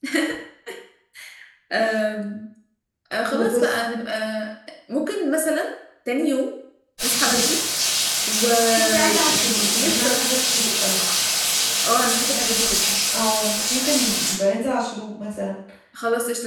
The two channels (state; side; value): identical; both; correlation 1.00